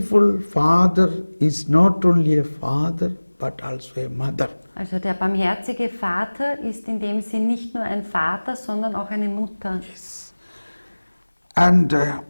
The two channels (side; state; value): both; inverted; correlation -1.00